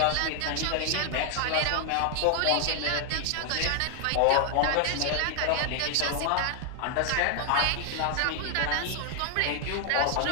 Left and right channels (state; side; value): different; both; correlation 0.00